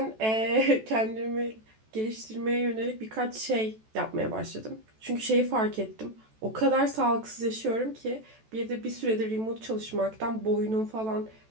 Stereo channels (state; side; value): late; left; 14 ms